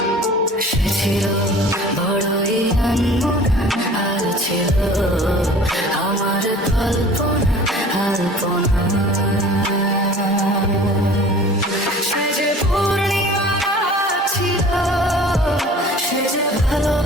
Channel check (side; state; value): both; normal; correlation 0.45